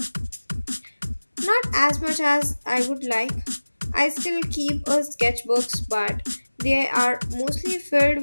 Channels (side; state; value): both; inverted; correlation -1.00